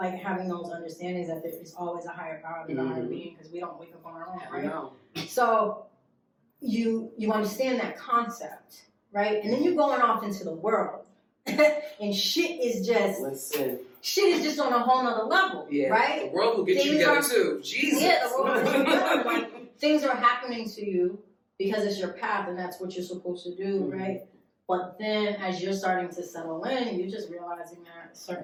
having those understandings that there is always a higher God and a higher being, because we don't wake up on our own, right? No. So you understand that concept, right? And then you're going off into the world. And shit is just on a whole nother level, right? The world will get you together too. Jesus. Yeah, the world will get you together. Like, things are happening to you because it's your path and that's what you're supposed to do, right? But then as you're starting to settle in, you're just realizing that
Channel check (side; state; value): both; identical; correlation 1.00